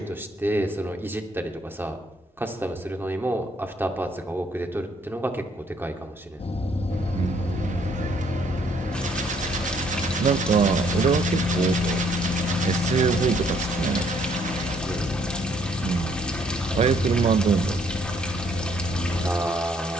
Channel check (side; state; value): both; normal; correlation 0.67